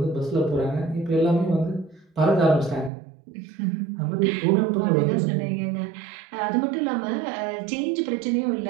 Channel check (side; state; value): left; drops out; at 2.9 s